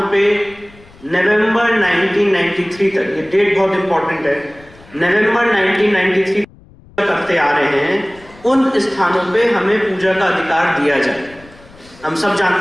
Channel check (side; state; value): left; noise; rumble, 25 dB below the sound